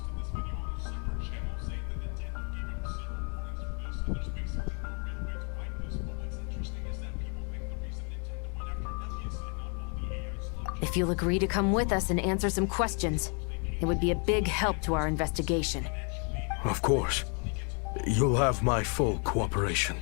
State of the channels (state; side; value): quieter; right; 38.3 dB